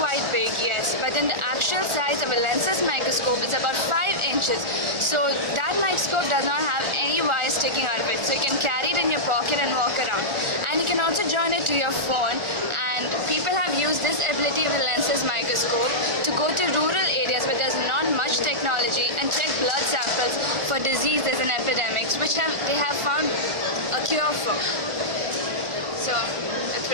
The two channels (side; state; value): left; late; 1.4 ms